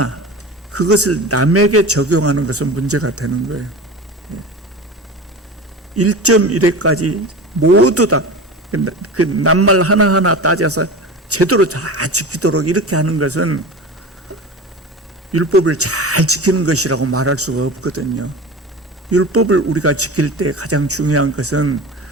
그것을 남에게 적용하는 것은 문제가 되는 거예요. 1.1회까지 모두 다 그 낱말 하나하나 따져서 제대로 다 지키도록 이렇게 하는 것은 율법을 잘 지키는 것이라고 말할 수가 없거든요. 율법을 우리가 지킬 때 가장 중요한 것은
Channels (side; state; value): both; normal; correlation 0.31